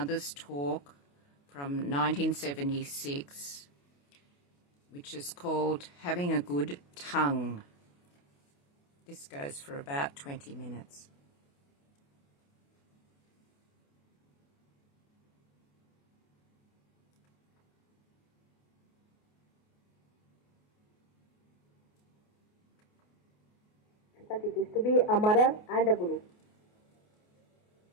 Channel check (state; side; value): late; right; 28 ms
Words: talk from 1976, which is called Having a Good Tongue. This goes for about 20 minutes. But it is to be a mother and a guru,